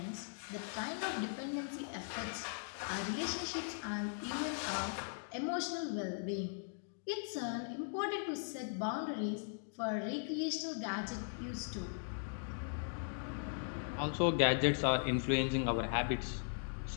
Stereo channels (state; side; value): silent; right; digital silence